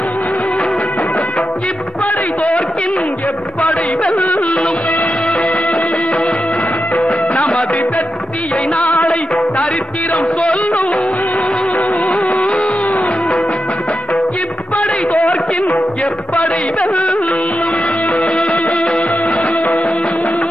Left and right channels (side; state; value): both; normal; correlation 0.88